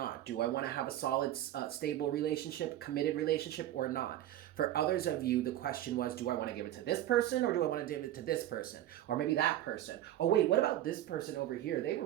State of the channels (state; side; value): quieter; left; 13.1 dB